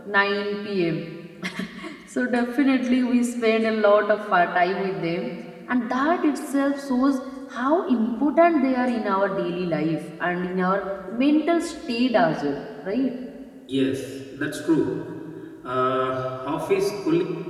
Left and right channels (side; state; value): both; identical; correlation 1.00